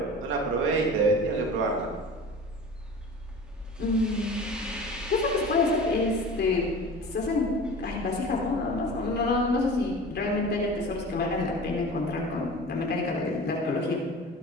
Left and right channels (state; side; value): normal; both; correlation 0.37